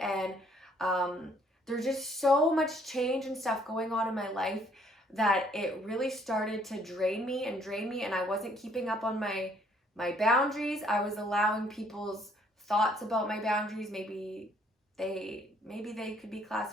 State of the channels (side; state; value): both; normal; correlation 0.64